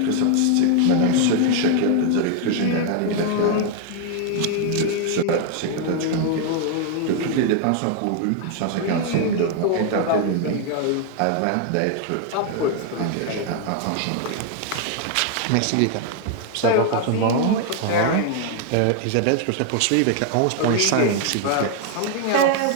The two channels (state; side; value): different; both; correlation 0.00